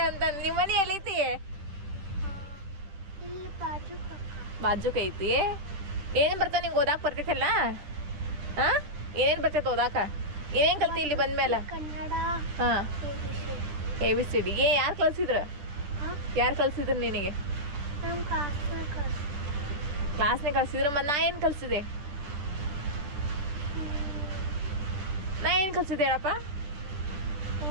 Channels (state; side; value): late; left; 10 ms